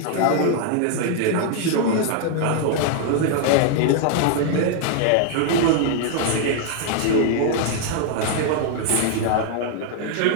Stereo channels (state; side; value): different; both; correlation 0.00